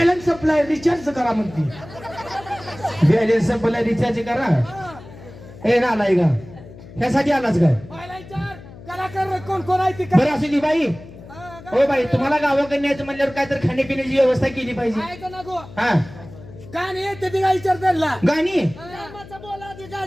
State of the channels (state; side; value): noise; left; hum, 18 dB below the sound